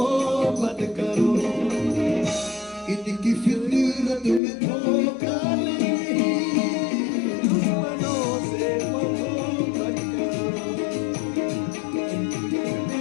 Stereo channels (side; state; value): right; drops out; at 4.4 s